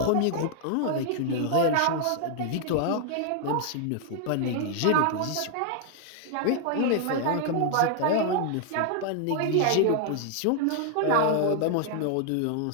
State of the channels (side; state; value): both; different; correlation 0.00